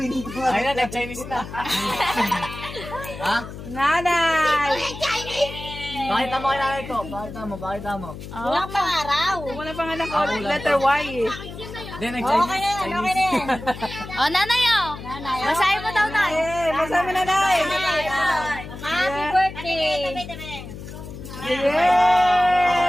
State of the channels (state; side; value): noise; left; hum, 12 dB below the sound